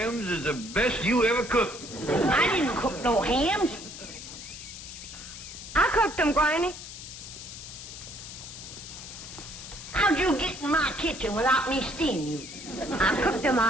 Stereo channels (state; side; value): noise; left; hiss, 12 dB below the sound